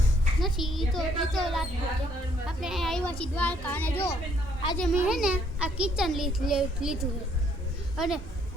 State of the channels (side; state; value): right; noise; rumble, 16 dB below the sound